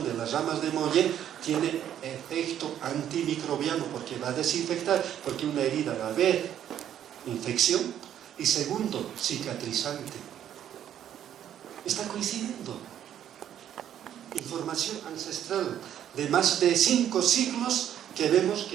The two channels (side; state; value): left; quieter; 10.4 dB